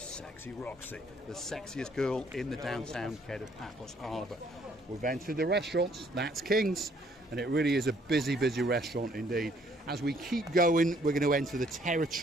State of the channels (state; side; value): normal; both; correlation 0.64